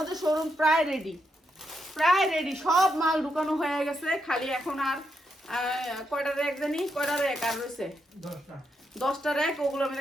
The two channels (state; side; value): normal; both; correlation 0.82